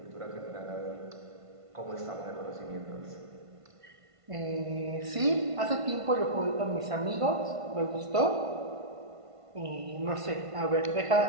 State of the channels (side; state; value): left; late; 1.5 ms